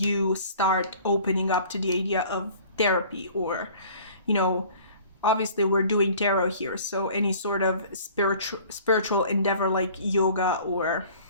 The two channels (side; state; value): both; inverted; correlation -0.49